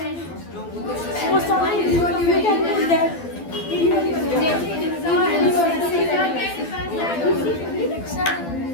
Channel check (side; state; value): right; late; 12 ms